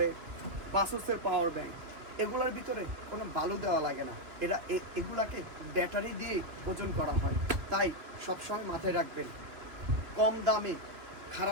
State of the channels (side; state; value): left; late; 2.9 ms